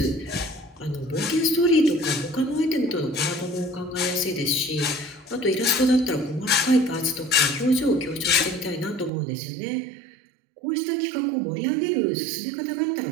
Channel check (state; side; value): drops out; left; at 9.1 s